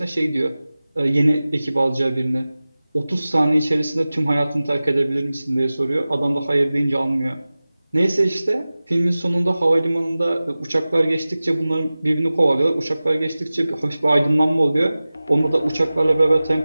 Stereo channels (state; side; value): inverted; both; correlation -0.97